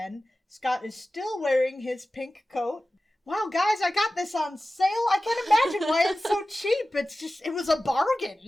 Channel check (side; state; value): both; normal; correlation 0.95